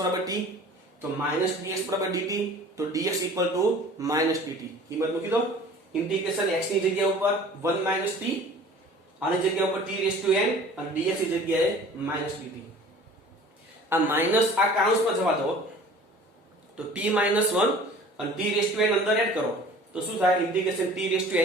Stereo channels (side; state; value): both; normal; correlation 0.46